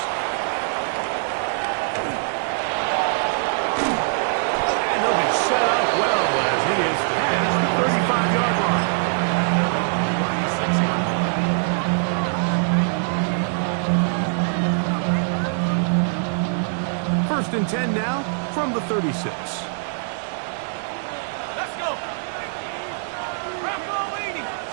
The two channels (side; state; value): left; silent; digital silence